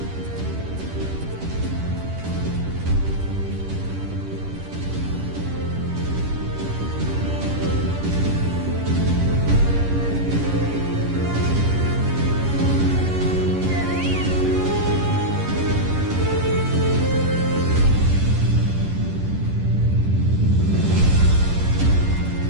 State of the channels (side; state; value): left; late; 10 ms